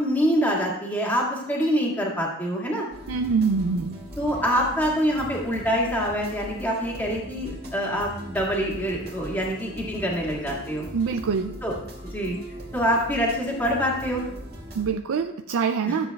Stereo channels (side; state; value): both; normal; correlation 0.45